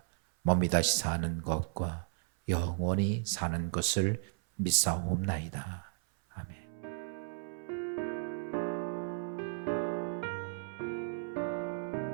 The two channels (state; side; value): silent; left; 55 dB below the other